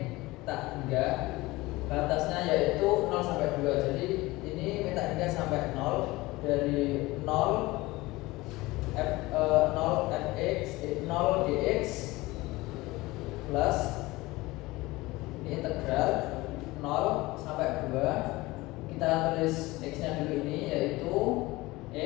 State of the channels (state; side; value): quieter; right; 20.5 dB